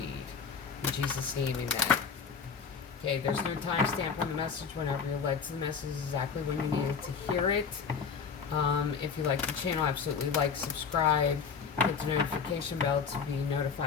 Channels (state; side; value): quieter; right; 6.0 dB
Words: In Jesus' name, amen. Okay, there's no timestamp on the message. Whenever you're led to the message, exactly when you needed to hear it. If you like the channel, absolutely like, subscribe, hit the notification bell to be